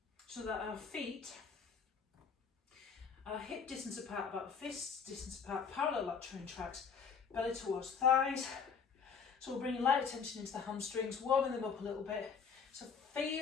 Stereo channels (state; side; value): quieter; right; 6.2 dB